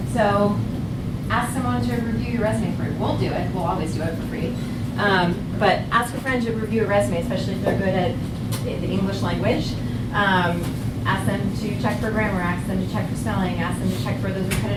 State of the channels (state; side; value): identical; both; correlation 1.00